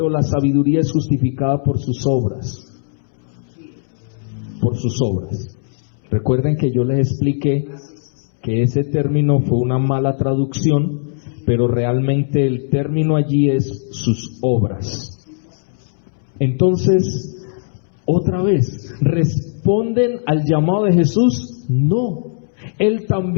la sabiduría es justificada por sus obras. Por sus obras. Recuerden que yo les expliqué que ese término fue una mala traducción, pero realmente el término allí es sus obras. Entonces, otra vez, ¿responden al llamado de Jesús? No. Él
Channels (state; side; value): silent; right; 67 dB below the other